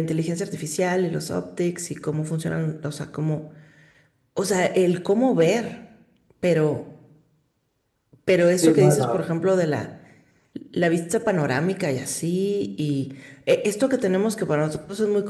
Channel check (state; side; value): identical; both; correlation 1.00